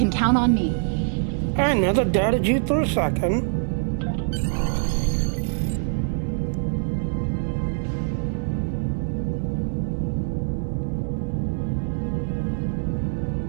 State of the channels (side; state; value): left; silent; digital silence